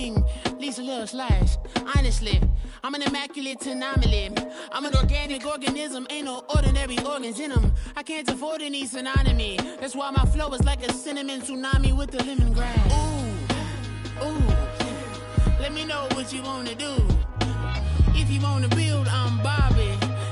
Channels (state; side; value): identical; both; correlation 1.00